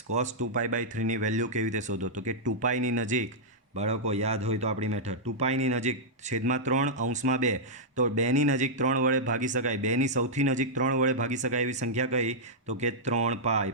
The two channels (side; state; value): both; normal; correlation -0.08